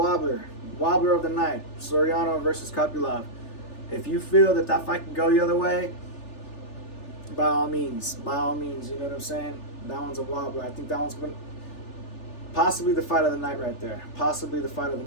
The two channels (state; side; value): late; right; 3.4 ms